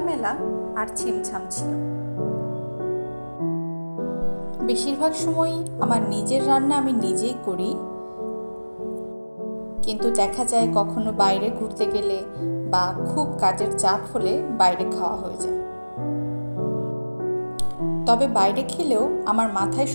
আর ছিমছাম ছিল। বেশিরভাগ সময়ই আমার নিজের রান্না আমি নিজেই করি, কিন্তু দেখা যায় কখনো বাইরে ঘুরতে গেলে বা খুব কাজের চাপ হলে বাইরে খাওয়া হয়ে যায়। তবে বাইরে খেলেও আমার মাথায়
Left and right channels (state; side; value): inverted; both; correlation -1.00